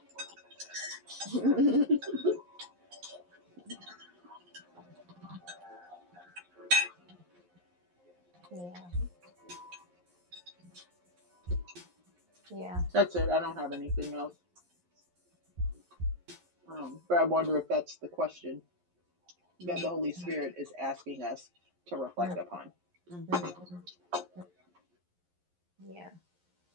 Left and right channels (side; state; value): left; late; 11 ms